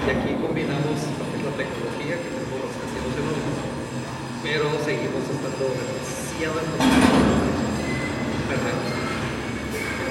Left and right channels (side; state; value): both; identical; correlation 1.00